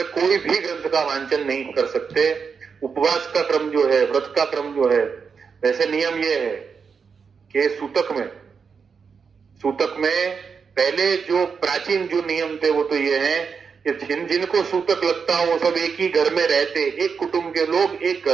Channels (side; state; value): left; quieter; 5.9 dB